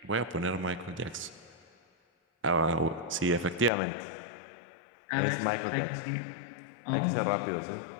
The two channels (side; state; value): right; drops out; at 3.7 s